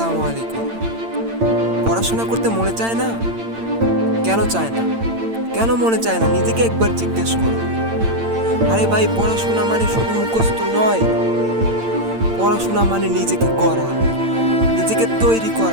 আসসালামু আলাইকুম। পড়াশোনা করতে মনে চায় না? কেন চায় না? কেন মনে চায় না? নিজেকে একবার জিজ্ঞেস করো। আরে ভাই, পড়াশোনা মানে শুধু মুখস্থ নয়। পড়াশোনা মানে নিজেকে গড়া, নিজেকে তৈরি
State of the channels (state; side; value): late; left; 8.8 ms